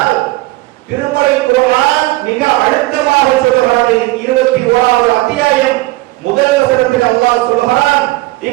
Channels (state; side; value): quieter; left; 19.9 dB